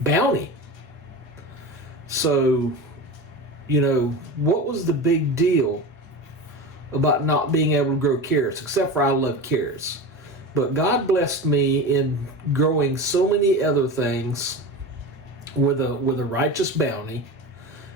So, what was the big deal about not being able to grow carrots? Except for I love carrots. But God blessed me in growing so many other things with a righteous bounty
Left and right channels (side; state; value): both; normal; correlation 0.27